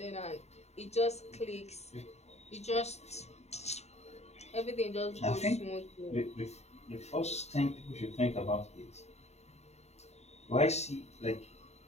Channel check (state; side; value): late; right; 0.32 ms